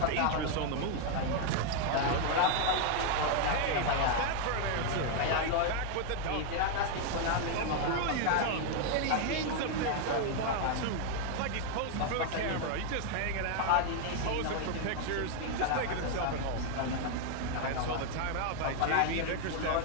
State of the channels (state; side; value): different; both; correlation 0.00